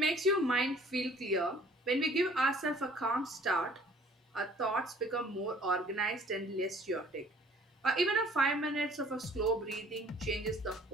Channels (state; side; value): normal; both; correlation 0.54